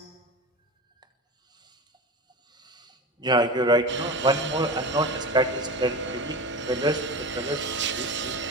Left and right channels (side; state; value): both; normal; correlation 0.27